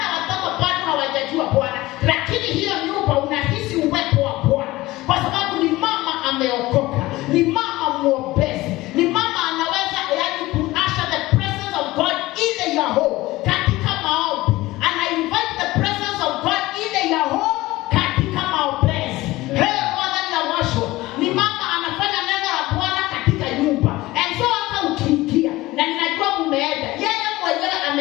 watoto bado hawajajua Bwana, lakini hiyo nyumba unahisi uwepo wa Bwana kwa sababu ni mama ameokoka, ni mama mwombezi, ni mama anaweza yaani kuasha the presence of God in your home katika maombi. Ana invite the presence of God in your home katika maombezi. Bwana ni awasho. Ni mama anafanya neno la Bwana katika nyumba. And so hata ukiingia na ninajua mumeenda, yeye mwenyewe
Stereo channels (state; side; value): quieter; right; 18.7 dB